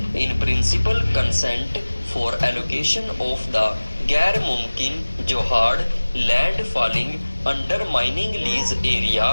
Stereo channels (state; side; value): inverted; both; correlation -1.00